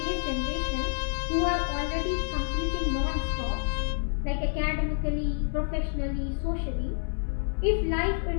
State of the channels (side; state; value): right; silent; 59 dB below the other